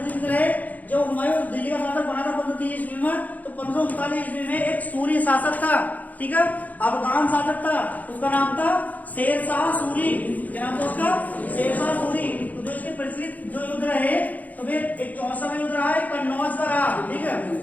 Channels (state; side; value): late; right; 0.079 ms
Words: रहे। जब हुमायूं दिल्ली का शासक बना था 1530 ईस्वी में, तो 1539 ईस्वी में एक सूरी शासक था, ठीक है, अफगान शासक था, उसका नाम था शेर शाह सूरी। क्या नाम था उसका? शेर शाह सूरी। तो जो इसके प्रचलित जो युद्ध रहे, तो फिर एक चौसा का युद्ध रहा है, कन्नौज का रहा, ठीक है।